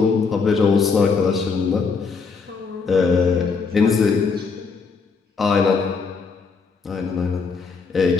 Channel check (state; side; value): quieter; right; 5.0 dB